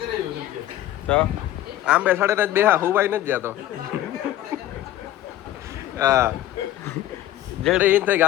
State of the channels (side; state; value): right; quieter; 13.5 dB